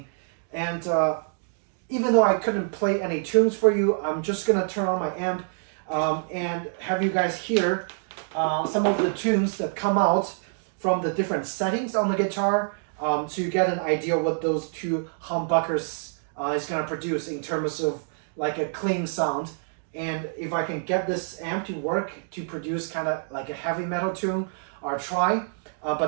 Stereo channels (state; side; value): silent; left; digital silence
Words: And even though I couldn't play any tunes for you, I'm just gonna turn on my amp and have you guys hear some of the tunes that come out from the different settings on the guitar, so you get an idea what those two humbuckers is gonna produce in terms of like a clean sound. And if I can get this amp to work to produce kind of like a heavy metal tune, I'll try,